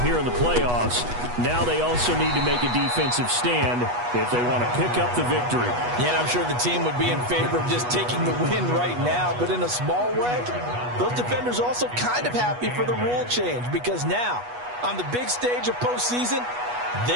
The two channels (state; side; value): late; left; 8.2 ms